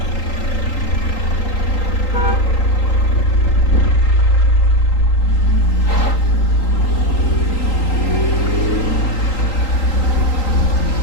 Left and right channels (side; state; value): right; late; 3.8 ms